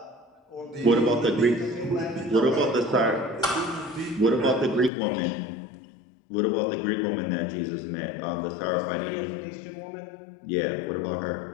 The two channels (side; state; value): right; drops out; at 4.9 s